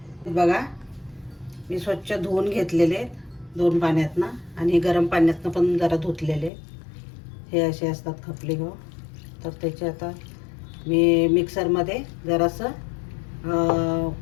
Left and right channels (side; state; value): right; drops out; at 6.5 s